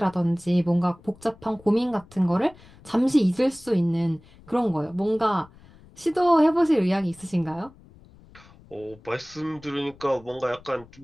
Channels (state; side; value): noise; left; rumble, 24 dB below the sound